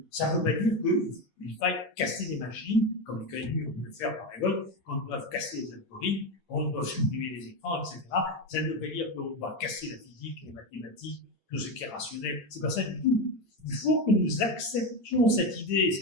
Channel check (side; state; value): right; late; 8.8 ms